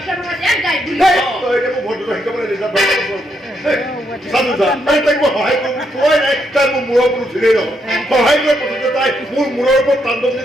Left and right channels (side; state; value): both; normal; correlation 0.77